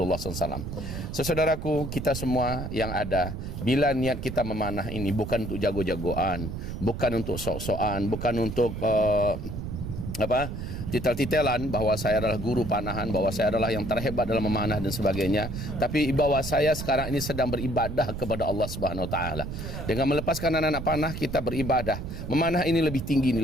SAW. Saudaraku, kita semua yang ada, bila niat kita memanah ini bukan untuk jago-jagoan, bukan untuk sok-sokan, bukan untuk titel-titelan bahwa saya adalah guru panahan, bahwa saya adalah yang terhebat dalam memanah dan sebagainya, tapi bahwa saya sekarang ini sedang beribadah kepada Allah Subhanahu wa taala. Dengan melepaskan anak-anak panah, kita beribadah. Memanah ini lebih tinggi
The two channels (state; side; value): noise; right; rumble, 6 dB below the sound